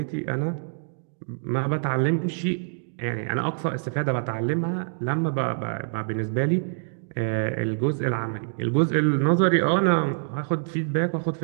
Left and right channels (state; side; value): silent; left; digital silence